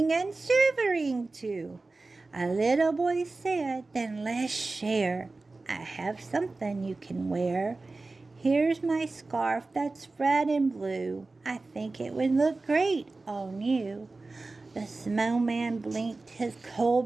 and shivering too. A little boy said, then let's share. I have something you can wear. Here's my scarf that's red and blue. I think it would look great on you. The snowman blinked his coal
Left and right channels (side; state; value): left; quieter; 3.4 dB